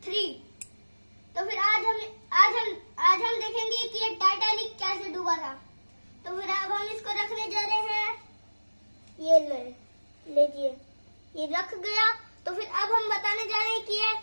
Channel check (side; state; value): both; inverted; correlation -1.00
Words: 3। तो फिर आज हम देखेंगे कि ये टाइटैनिक कैसे डूबा था। तो फिर अब हम इसको रखने जा रहे हैं। ये लीजिए, ये रख गया। तो फिर अब हम बताने जा रहे हैं कि ये